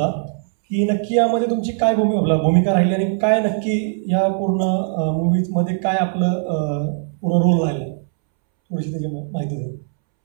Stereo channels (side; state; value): left; silent; 66 dB below the other